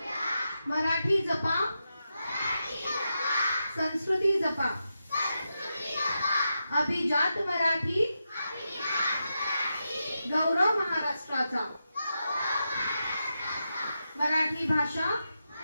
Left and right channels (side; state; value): both; inverted; correlation -0.87